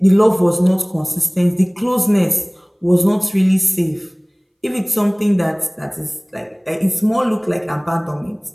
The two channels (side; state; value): both; identical; correlation 1.00